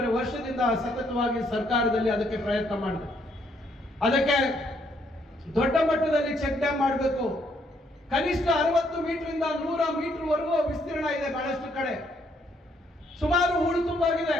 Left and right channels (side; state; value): both; normal; correlation 0.71